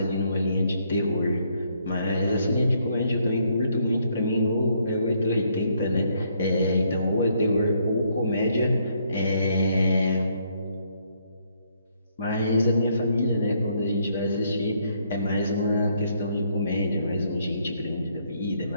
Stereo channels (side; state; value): both; inverted; correlation -0.71